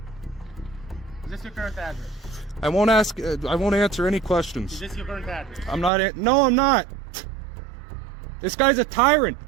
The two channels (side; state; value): left; drops out; at 5.9 s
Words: Is this your current address? I won't answer any questions. Is this your current address? I'm not. No, I'm not. This guy's a tyrant.